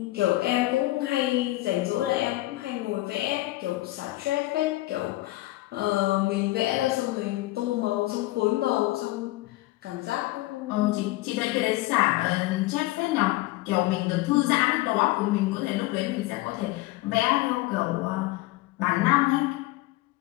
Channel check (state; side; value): quieter; right; 18.7 dB